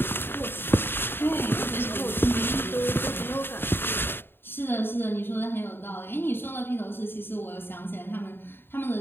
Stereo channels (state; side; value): late; right; 0.10 ms